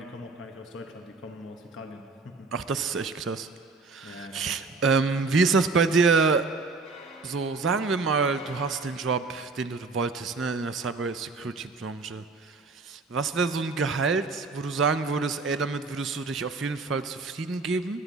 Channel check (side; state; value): left; quieter; 4.0 dB